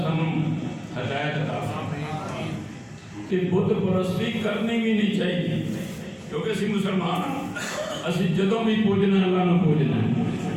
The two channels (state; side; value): identical; both; correlation 1.00